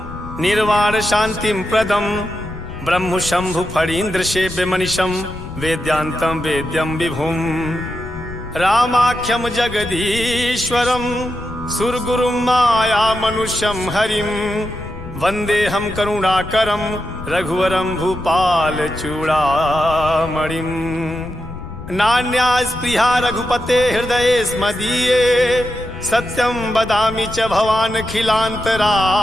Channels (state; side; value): noise; left; rumble, 12 dB below the sound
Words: निर्वाण शांतिं प्रदं ब्रह्म शंभु फणीन्द्र सेव्यमनिशं वेद्यान्तं वेद्यं विभुं रामाख्यं जगदीश्वरं सुरगुरुं माया मनुष्यं हरिं वन्देऽहं करुणाकरं रघुवरं भूपाल चूड़ामणिं नान्या स्पृहा रघुपते हृदये स्मदीये सत्यं वदामि च भवान्